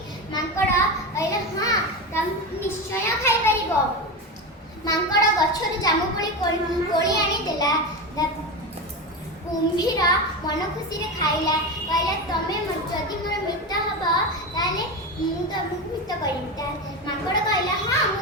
माकड़ कहला, हां तम निश्चय खाइ परिबो। माकड़ गछर जामुकोली कोली आनी देला। कुंभीर मन खुशी रे खाइला। कहला, तमे जदि मोर मित्र हबो ताले मु तमु मित्र करिता। माकड़ कहला, हां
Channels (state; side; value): normal; both; correlation 0.20